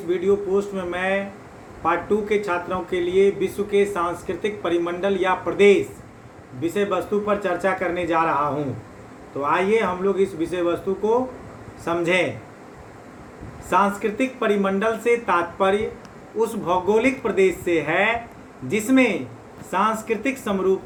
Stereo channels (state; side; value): identical; both; correlation 1.00